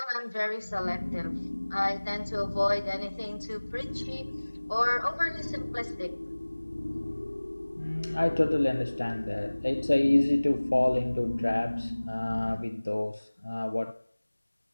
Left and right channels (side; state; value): both; inverted; correlation -1.00